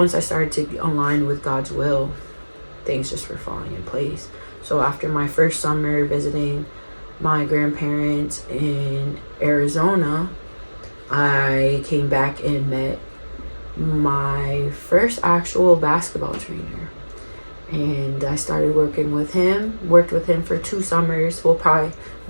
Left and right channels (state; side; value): inverted; both; correlation -1.00